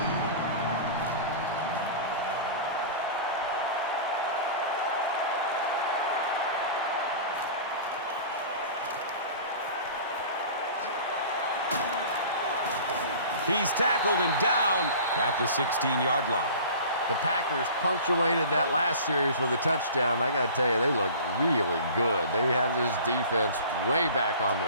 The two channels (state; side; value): inverted; both; correlation -0.40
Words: He's tackled and down at the 16-yard line. The Packers punctuated that last series with a touchdown. I got to tell you, they look really good. They have this defense way back on